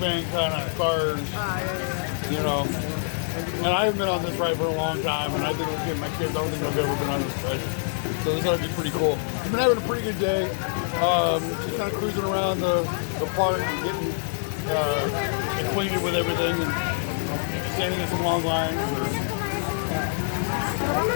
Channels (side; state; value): right; silent; digital silence